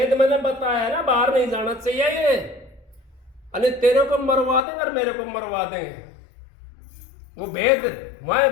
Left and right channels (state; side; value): drops out; right; at 4.6 s